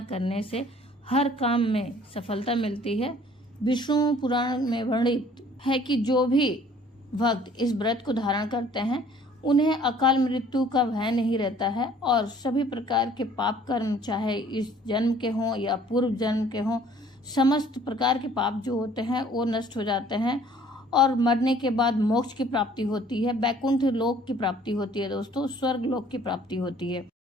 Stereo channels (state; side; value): normal; both; correlation 0.55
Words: करने से हर काम में सफलता मिलती है। विष्णु पुराण में वर्णित है कि जो भी भक्त इस व्रत को धारण करते हैं उन्हें अकाल मृत्यु का भय नहीं रहता है और सभी प्रकार के पाप कर्म, चाहे इस जन्म के हों या पूर्व जन्म के हों, समस्त प्रकार के पाप जो होते हैं वो नष्ट हो जाते हैं और मरने के बाद मोक्ष की प्राप्ति होती है, वैकुंठ लोक की प्राप्ति होती है। दोस्तों, स्वर्ग लोक की प्राप्ति होती है।